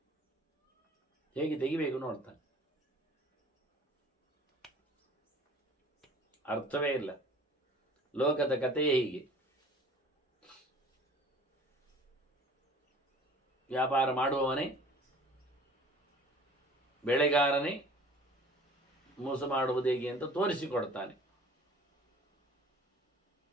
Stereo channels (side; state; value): both; normal; correlation 0.48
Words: ಹೇಗೆ ತೆಗಿಬೇಕು ನೋಡ್ತಾನೆ. ಅರ್ಥವೇ ಇಲ್ಲ. ಲೋಕದ ಕಥೆಯೇ ಹೀಗೆ. ವ್ಯಾಪಾರ ಮಾಡುವವನೇ, ಬೆಳೆಗಾರನೇ ಮೋಸ ಮಾಡುವುದು ಹೇಗೆ ಅಂತ ತೋರಿಸಿಕೊಡ್ತಾನೆ.